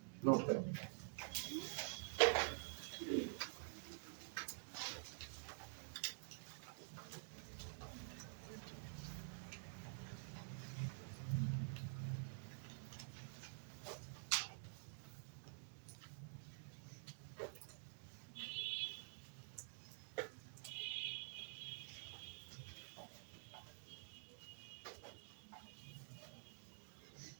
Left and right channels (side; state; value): left; silent; digital silence